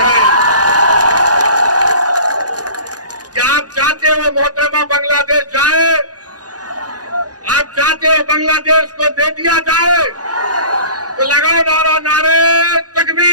क्या आप चाहते हो मोहतरमा बांग्लादेश जाए? आप चाहते हो बांग्लादेश को दे दिया जाए? तो लगाओ नारा, नारे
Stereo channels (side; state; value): left; late; 0.68 ms